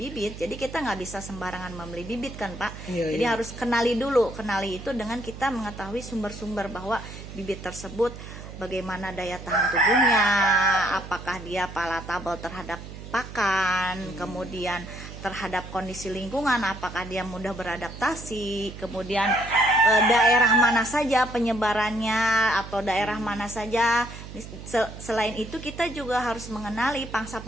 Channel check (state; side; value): noise; right; hum, 12 dB below the sound